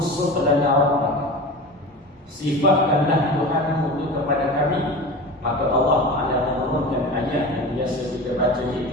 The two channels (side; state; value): both; normal; correlation 0.31